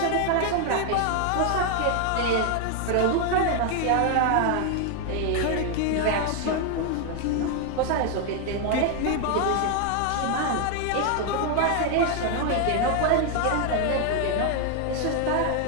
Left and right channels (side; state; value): both; different; correlation 0.00